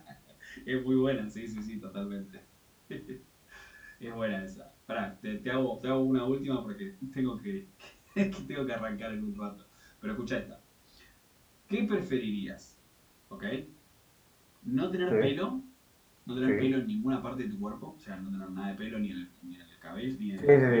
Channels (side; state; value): both; identical; correlation 1.00